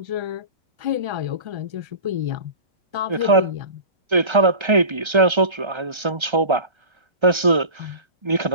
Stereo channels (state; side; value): late; left; 1.3 ms